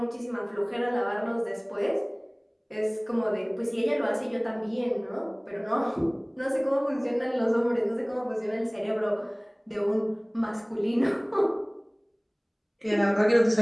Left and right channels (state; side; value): identical; both; correlation 1.00